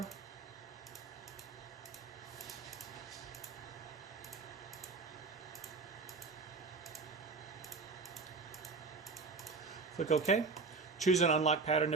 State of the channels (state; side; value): quieter; left; 4.3 dB